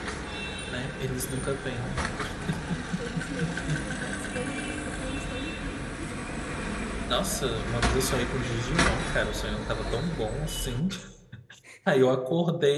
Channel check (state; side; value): identical; both; correlation 1.00